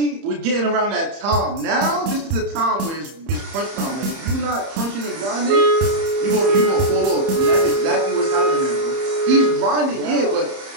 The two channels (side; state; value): left; late; 30 ms